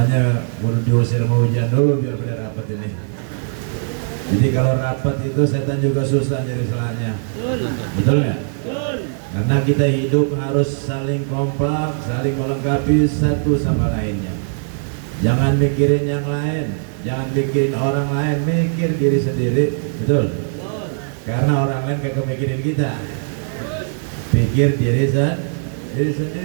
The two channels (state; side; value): silent; left; digital silence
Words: baru diusir mau hujan dulu biar pada rapat ini. Jadi kalau rapat itu setan juga susah nyari celahnya. Betul nggak? Karena kita hidup harus saling kompak, saling melengkapi satu sama lainnya. Jangan mikirin yang lain, jangan mikirin orang lain, mikir diri sendiri. Betul? Karena orang lain kagak mikirin kita. Pikir diri